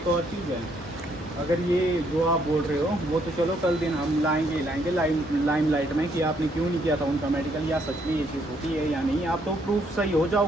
और चीज़ है, अगर ये जो आप बोल रहे हो वो तो चलो कल दिन हम लाएंगे लाइम लाइट में कि आपने क्यों नहीं किया था उनका मेडिकल, या सच में ये चीज़ होती है या नहीं। आप तो प्रूफ सही हो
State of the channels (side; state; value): both; normal; correlation 0.71